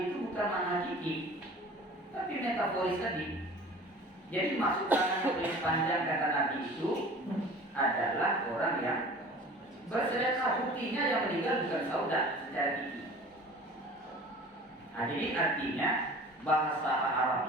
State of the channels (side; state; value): both; normal; correlation 0.43